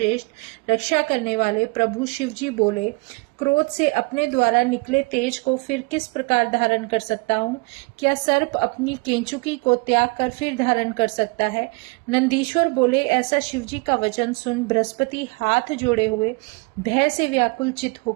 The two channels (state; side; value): quieter; left; 28.8 dB